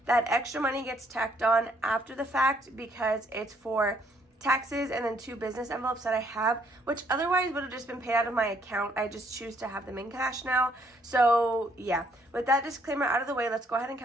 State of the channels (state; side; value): normal; both; correlation 0.68